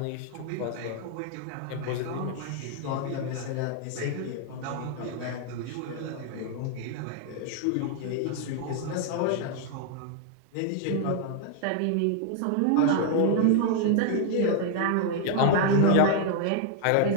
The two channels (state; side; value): different; both; correlation 0.00